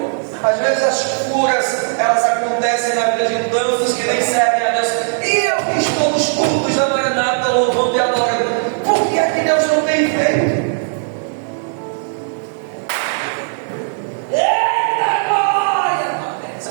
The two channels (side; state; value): left; silent; 65 dB below the other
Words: Às vezes as curas, elas acontecem na vida de tantos que nem servem a Deus. E eu que estou nos cultos da Maranata, louvando e adorando. Por que é que Deus não tem feito? Eita glória!